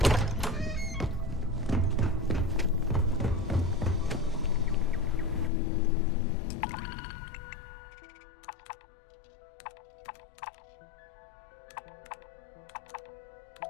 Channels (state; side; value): drops out; right; at 5.5 s